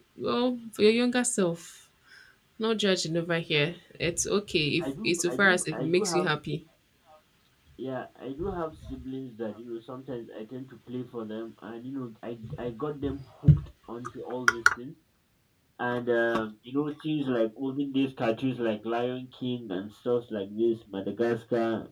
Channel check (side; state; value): both; identical; correlation 1.00